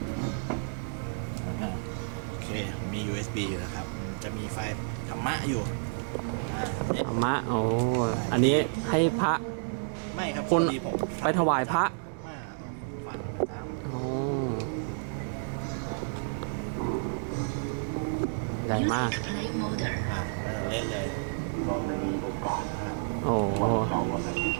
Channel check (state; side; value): silent; left; digital silence